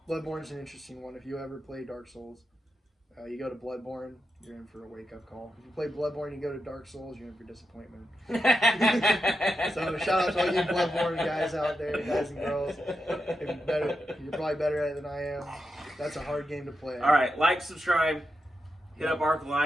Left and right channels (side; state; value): both; normal; correlation 0.87